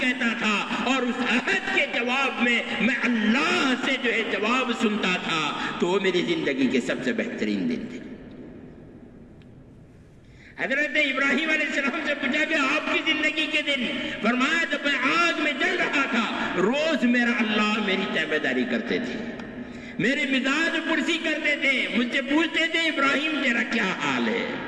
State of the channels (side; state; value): both; identical; correlation 1.00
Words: کہتا تھا اور اس عہد کے جواب میں اللہ سے جو ہے جواب سنتا تھا، تو وہ میری زندگی کے سب سے بہترین دن تھے۔ حضرت ابراہیم علیہ السلام سے پوچھا کہ آپ کی زندگی کے دن؟ فرمایا جب میں آگ میں جل رہا تھا، روز میرا اللہ میری تابعداری کرتے تھے، میرے مزاج پرسی کرتے تھے، مجھ سے پوچھتے تھے ابراہیم تیرا کیا حال ہے؟